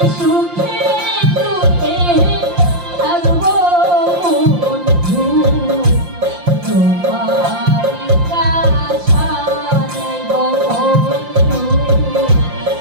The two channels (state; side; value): late; left; 5.7 ms